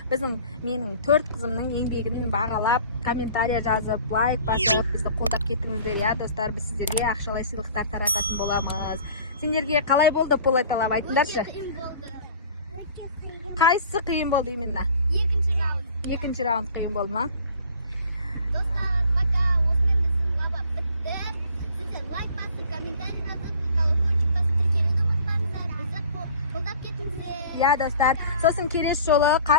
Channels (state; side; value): inverted; both; correlation -0.47